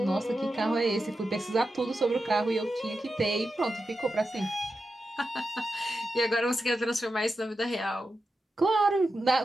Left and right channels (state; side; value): normal; both; correlation 0.90